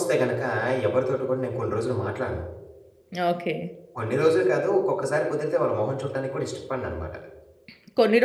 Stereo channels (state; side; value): identical; both; correlation 1.00